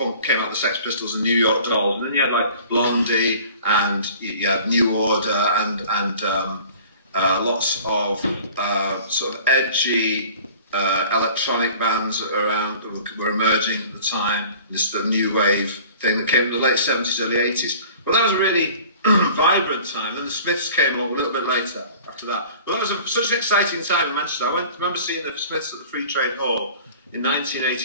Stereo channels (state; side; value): inverted; both; correlation -0.46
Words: came out the Sex Pistols and New York Dolls, and then you had like Blondie and you had New Order and lots of sort of edgy electronic bands around that were emerging at the time. This sort of New Wave thing that came in the late 70s, early 80s. Well, that was a really vibrant time. And the Smiths came along a little bit later after that. Well, that was such an exciting time in Manchester. I remember seeing the Smiths at the Free Trade Hall in